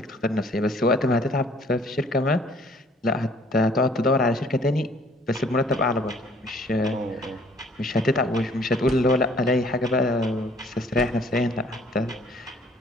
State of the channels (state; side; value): normal; both; correlation 0.58